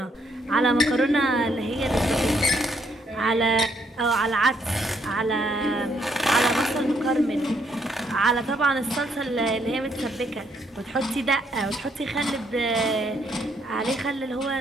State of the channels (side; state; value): both; normal; correlation 0.71